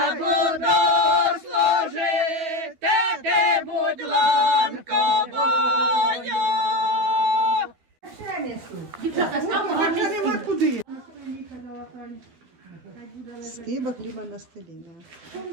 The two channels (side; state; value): left; late; 12 ms